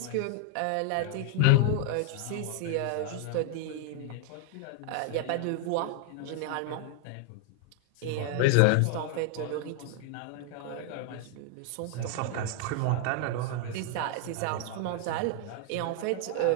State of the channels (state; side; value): different; both; correlation 0.00